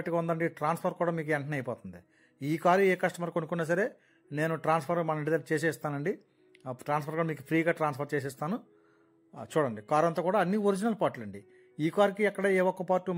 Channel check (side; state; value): both; identical; correlation 1.00